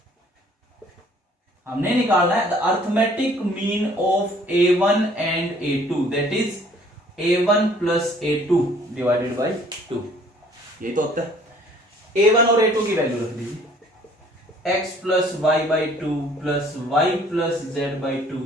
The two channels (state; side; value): normal; both; correlation 0.57